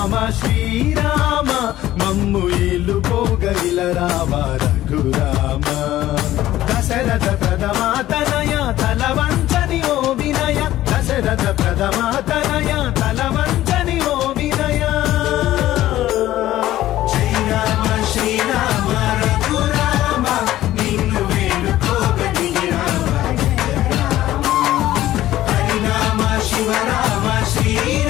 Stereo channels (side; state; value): right; quieter; 14.4 dB